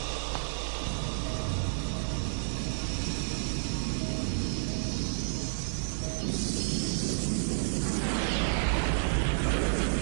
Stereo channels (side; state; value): left; silent; 57 dB below the other